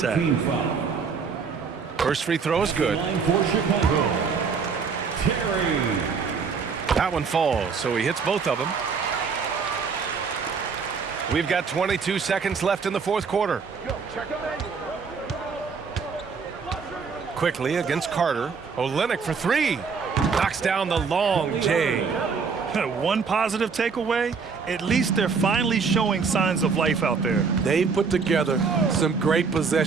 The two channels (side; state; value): left; quieter; 5.4 dB